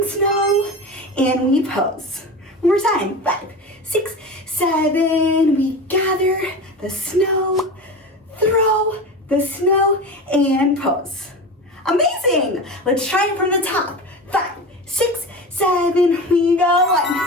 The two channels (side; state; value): both; normal; correlation 0.28